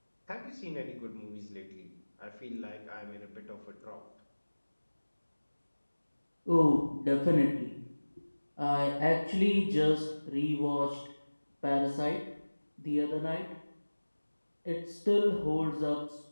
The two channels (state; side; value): inverted; both; correlation -1.00